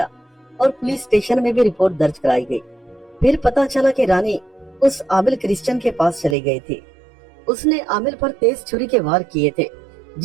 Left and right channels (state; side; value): drops out; left; at 6.4 s